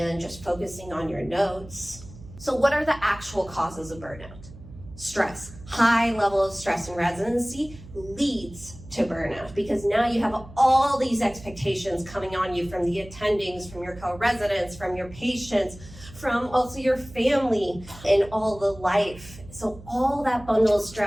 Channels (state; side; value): noise; right; hum, 18 dB below the sound